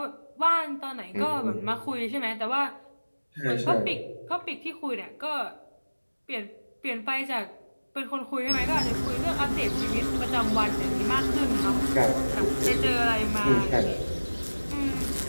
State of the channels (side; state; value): both; inverted; correlation -1.00